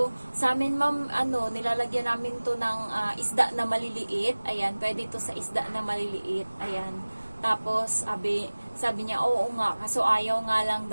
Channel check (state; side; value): inverted; both; correlation -1.00